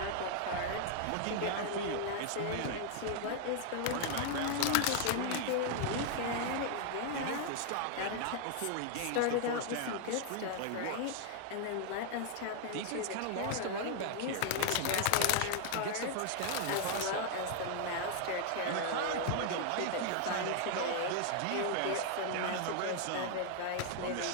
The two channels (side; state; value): both; different; correlation 0.00